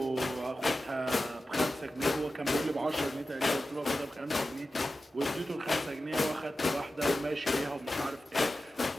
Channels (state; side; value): normal; both; correlation 0.93